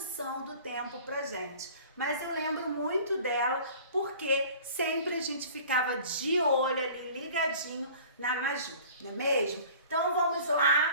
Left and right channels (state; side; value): inverted; both; correlation -0.46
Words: do tempo pra gente, mas eu lembro muito dela porque sempre a gente ficava de olho ali, ligadinho na Maju, não é mesmo? Então vamos